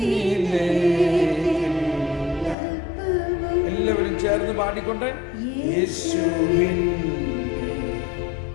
എല്ലാവരും ചേർന്ന് പാടിക്കൊണ്ട് യേശുവിൻ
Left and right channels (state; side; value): drops out; right; at 2.6 s